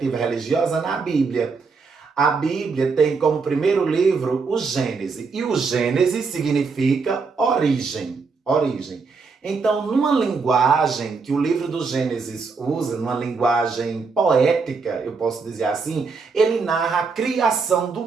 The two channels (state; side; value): quieter; left; 4.8 dB